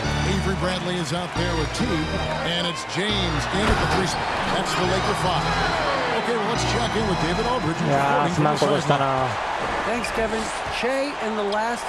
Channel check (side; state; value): both; identical; correlation 1.00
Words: Avery Bradley is out there with Teague, and it's James in at the 3 spot. That's the Laker 5. Okay, well, let's check in with David Aldridge. いやー、すまんことしたな。 Thanks, Kevin. Shea in the last